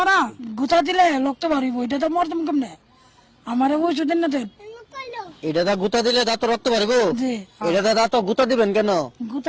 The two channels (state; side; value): identical; both; correlation 1.00